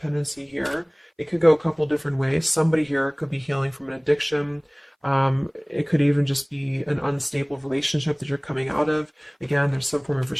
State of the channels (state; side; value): identical; both; correlation 1.00